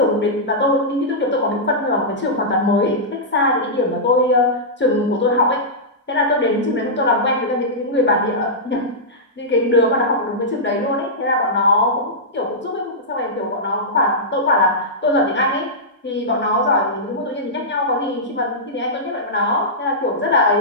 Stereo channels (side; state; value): both; normal; correlation -0.12